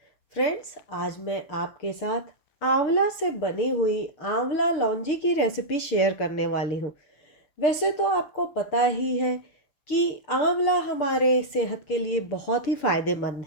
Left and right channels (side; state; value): right; late; 6.7 ms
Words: फ्रेंड्स। आज मैं आपके साथ आंवला से बनी हुई आंवला लौंजी की रेसिपी शेयर करने वाली हूँ। वैसे तो आपको पता ही है कि आंवला हमारे सेहत के लिए बहुत ही फायदेमंद